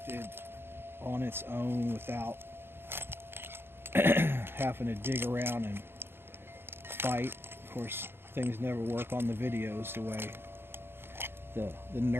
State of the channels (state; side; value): late; left; 0.11 ms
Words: on its own without having to dig around and fight. Of course, things never work on the videos the way the